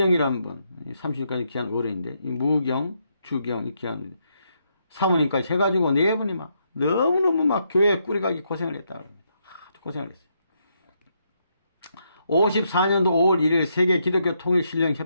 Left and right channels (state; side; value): inverted; both; correlation -0.78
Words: 분, 30년까지 귀한 어른인데, 이 무경, 주경, 이 귀한 사모님까지 해가지고 네 분이 막 너무너무 막 교회 꾸리가기 고생을 했다고 합니다. 아주 고생을 했어요. 54년도 5월 1일 세계 기독교 통일 신령